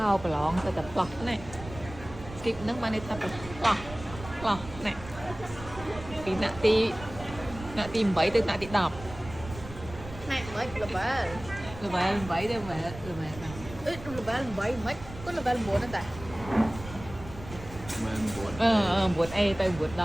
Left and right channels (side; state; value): right; noise; rumble, 14 dB below the sound